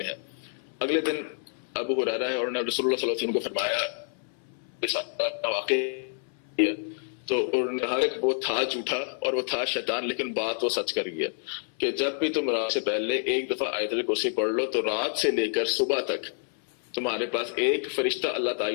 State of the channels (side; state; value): right; silent; 59 dB below the other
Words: ہے. اگلے دن ابو ہریرہ ہے اور انہوں نے رسول اللہ صلی اللہ علیہ وسلم کو فرمایا واقعی، تو انہوں نے کہا کہ وہ تھا جھوٹا اور وہ تھا شیطان، لیکن بات وہ سچ کر گیا کہ جب بھی تم رات سے پہلے ایک دفعہ آیت الکرسی پڑھ لو تو رات سے لے کر صبح تک تمہارے پاس ایک فرشتہ اللہ